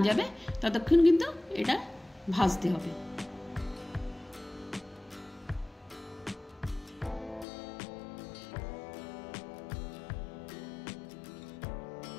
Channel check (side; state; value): right; drops out; at 7.5 s